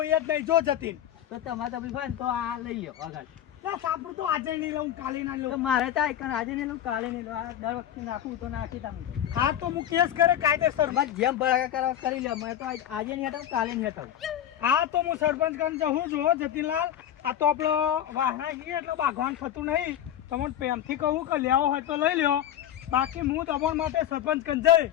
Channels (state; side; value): quieter; right; 10.7 dB